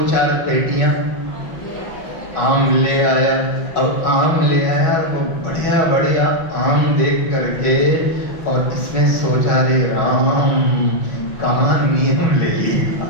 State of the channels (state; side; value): late; right; 6.1 ms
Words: पेटियां आम ले आया। अब आम ले आया वो बढ़िया बढ़िया आम देख करके, और इसने सोचा रे राम कहाँ नियम ले लिया।